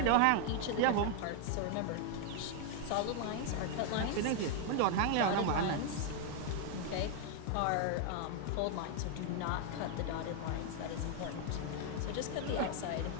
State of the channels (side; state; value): both; different; correlation 0.00